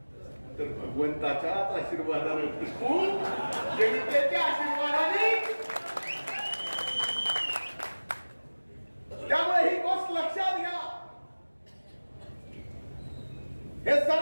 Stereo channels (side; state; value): both; inverted; correlation -1.00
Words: तर भगवंताच्याच आशीर्वादाने टिकून, जनतेच्या आशीर्वादाने. त्यामुळे ही गोष्ट लक्षात घ्या. हे